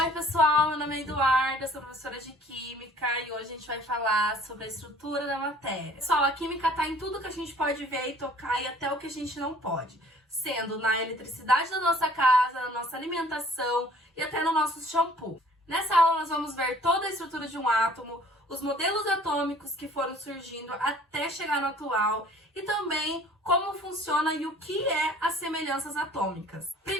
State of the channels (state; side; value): normal; both; correlation 0.53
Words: Oi pessoal, meu nome é Eduarda, sou professora de Química e hoje a gente vai falar sobre a estrutura da matéria. Pessoal, a Química tá em tudo que a gente pode ver e tocar e até o que a gente não pode, sendo na eletricidade da nossa casa, na nossa alimentação e até no nosso shampoo. Nessa aula nós vamos ver toda a estrutura de um átomo, os modelos atômicos que foram surgindo até chegar no atual e também como funciona e o que é as semelhanças atômicas.